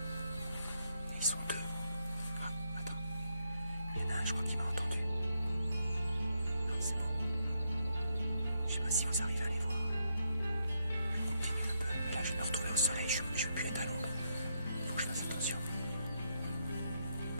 Ils sont deux. Ah, attends. Il y en a un, je crois qu'il m'a entendu. Non, c'est bon. Je sais pas si vous arrivez à les voir. Je continue un peu. Là, je vais me retrouver au soleil. Je ne veux plus être à l'ombre. Faut que je fasse attention.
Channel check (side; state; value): both; inverted; correlation -0.78